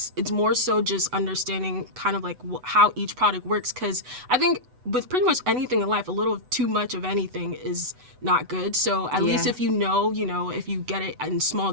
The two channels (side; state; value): left; late; 8.0 ms